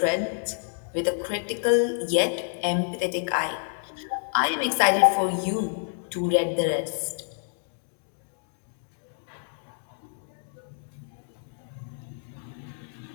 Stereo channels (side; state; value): right; silent; 59 dB below the other